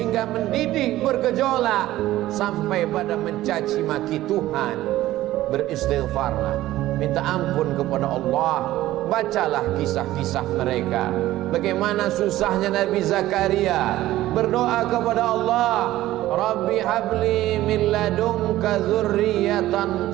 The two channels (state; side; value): quieter; left; 15.3 dB